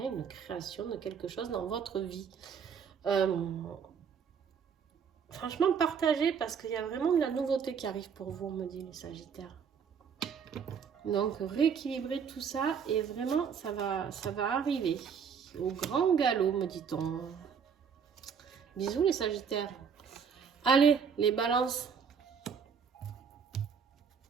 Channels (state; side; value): quieter; left; 6.8 dB